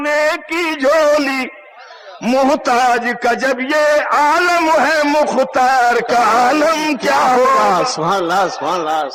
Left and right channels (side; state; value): both; identical; correlation 1.00